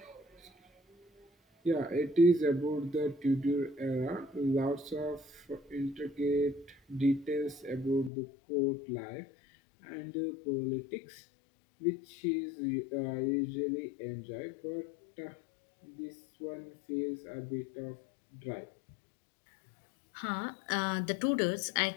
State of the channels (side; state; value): right; drops out; at 8.1 s